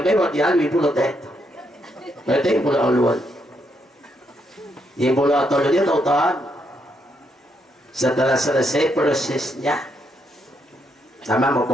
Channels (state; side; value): normal; both; correlation 0.77